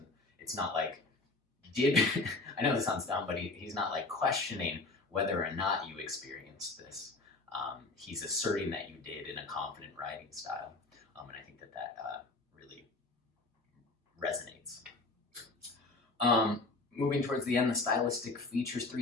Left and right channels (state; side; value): quieter; right; 3.4 dB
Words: it's not like, I know this sounds dumb, but he's not like questioning whether or not you experienced this. He's asserting that you did in a confident writing style. And I think that really resonates. Moving towards the end, the stylistic features, 3